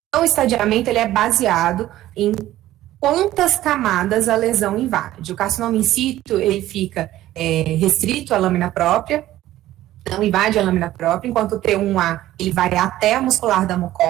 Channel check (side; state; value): left; quieter; 14.5 dB